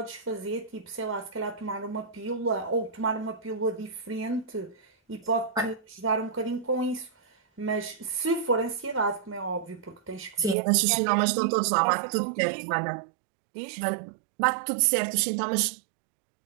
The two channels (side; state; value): left; drops out; at 10.6 s